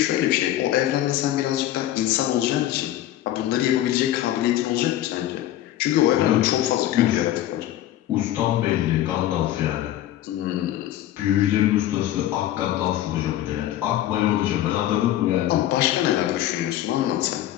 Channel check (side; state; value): right; quieter; 13.3 dB